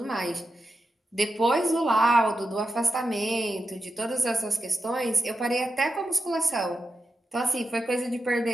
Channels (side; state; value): both; normal; correlation 0.89